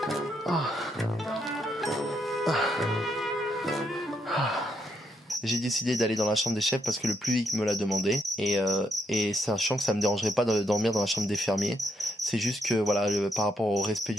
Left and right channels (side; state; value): both; normal; correlation 0.77